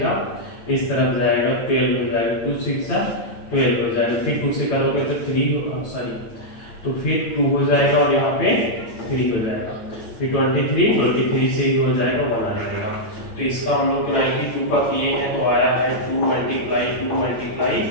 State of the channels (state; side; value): late; right; 8.9 ms